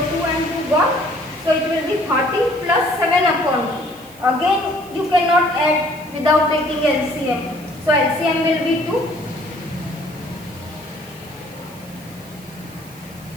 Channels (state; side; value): noise; right; hiss, 22 dB below the sound